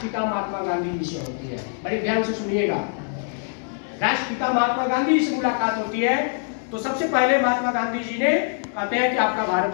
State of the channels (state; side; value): silent; right; 63 dB below the other